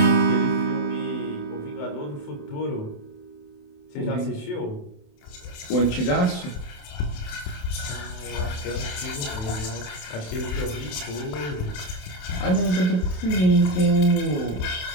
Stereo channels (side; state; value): right; late; 28 ms